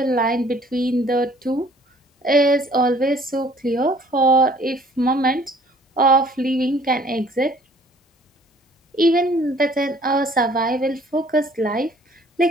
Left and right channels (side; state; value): both; normal; correlation 0.56